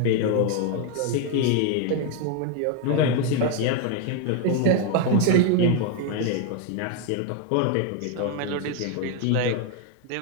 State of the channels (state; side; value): different; both; correlation 0.01